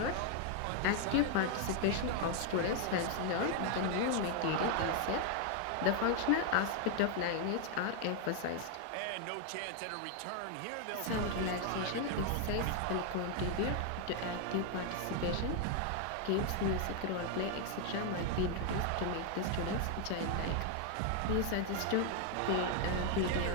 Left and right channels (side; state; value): both; different; correlation 0.01